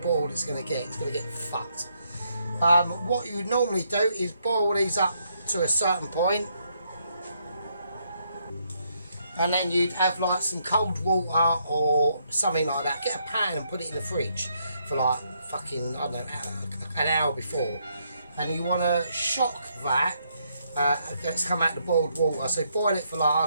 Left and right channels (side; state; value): both; inverted; correlation -0.75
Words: it's going to get. It's going to get fucked. What you would normally do is boil these up to a certain point, and then you'd have like some cold water or something like that. Get a pan and put it in the fridge for like fucking, I don't know, an hour before. And you want to shock that. It's come out the boiled water. So boil it for like, I